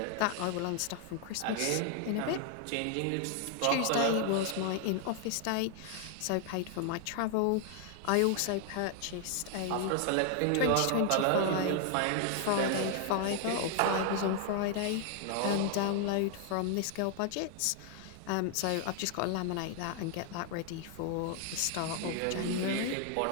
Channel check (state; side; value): different; both; correlation 0.00